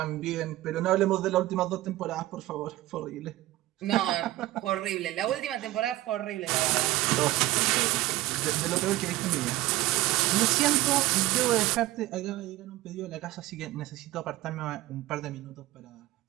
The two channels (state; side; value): quieter; left; 16.8 dB